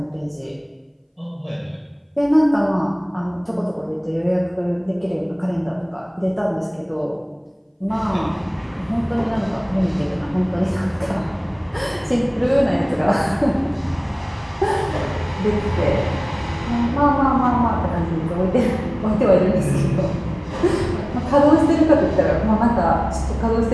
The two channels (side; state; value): both; identical; correlation 1.00